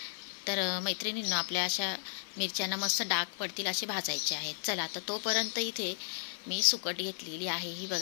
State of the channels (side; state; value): right; silent; 55 dB below the other